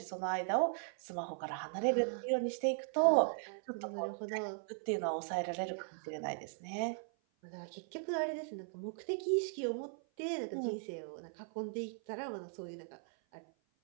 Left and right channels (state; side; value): silent; left; 52 dB below the other